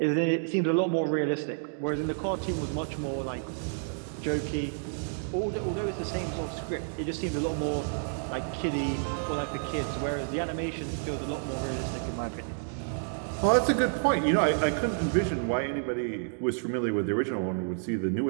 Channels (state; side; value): silent; left; digital silence